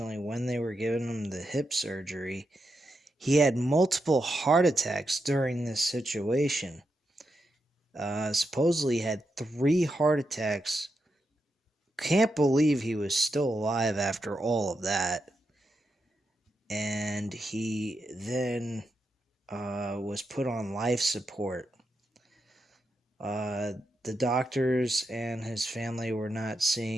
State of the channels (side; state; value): both; normal; correlation 0.86